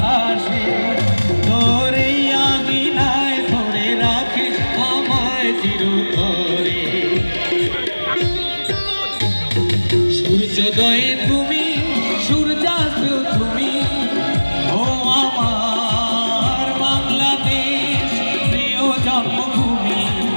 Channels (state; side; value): inverted; both; correlation -1.00